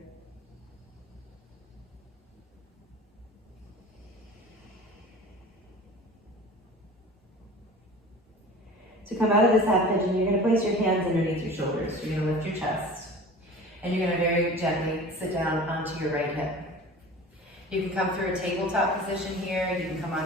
To come out of this half pigeon, you're going to place your hands underneath your shoulders. You're going to lift your chest. And you're going to very gently sit down onto your right hip. You can come through a tabletop position here. You can come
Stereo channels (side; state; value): both; normal; correlation 0.39